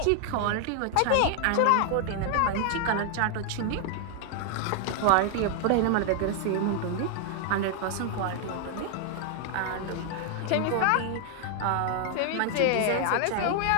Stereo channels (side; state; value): both; different; correlation 0.00